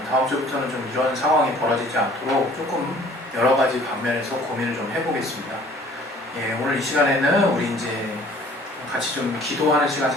다음 주부터는 좀 이런 상황이 벌어지지 않도록 조금 여러 가지 방면에서 고민을 좀 해보겠습니다. 예, 오늘 이 시간에는 우리 이제 같이 좀 기도하는 시간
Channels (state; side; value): normal; both; correlation 0.53